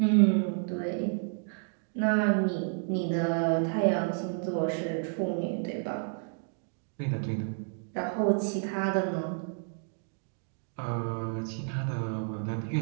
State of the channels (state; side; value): silent; left; 56 dB below the other